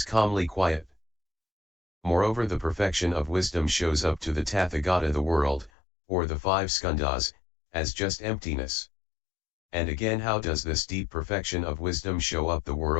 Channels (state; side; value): drops out; right; at 5.7 s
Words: calmly quiet. Moreover, the perfection of wisdom shows up to the Tathagata the world, or the 5 skandhas, as just emptiness. And again, how does this deep perfection of wisdom show up the